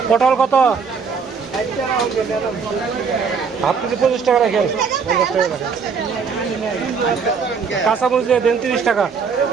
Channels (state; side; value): quieter; left; 5.7 dB